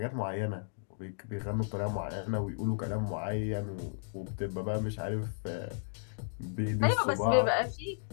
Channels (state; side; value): silent; right; digital silence